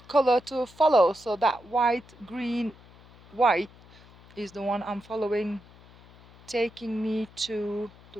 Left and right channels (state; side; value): noise; left; hum, 24 dB below the sound